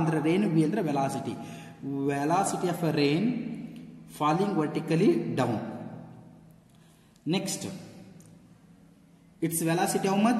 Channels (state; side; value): identical; both; correlation 1.00